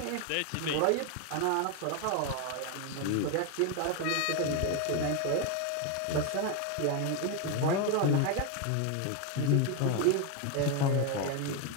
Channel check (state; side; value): different; both; correlation 0.01